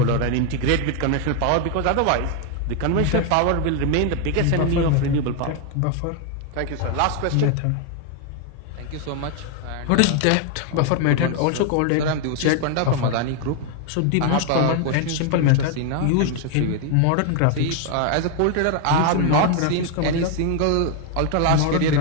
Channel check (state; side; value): different; both; correlation 0.00